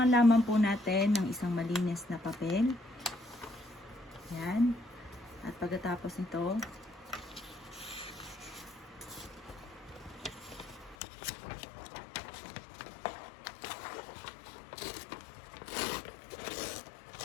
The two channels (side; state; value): right; drops out; at 11.0 s